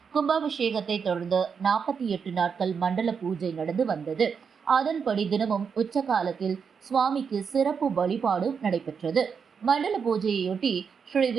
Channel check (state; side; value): quieter; left; 6.3 dB